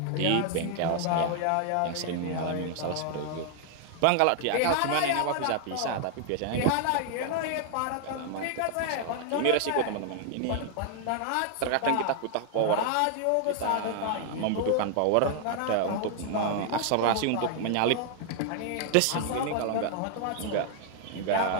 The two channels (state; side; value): different; both; correlation 0.00